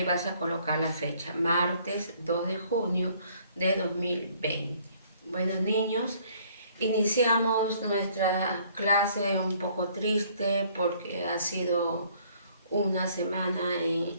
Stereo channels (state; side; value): inverted; both; correlation -0.61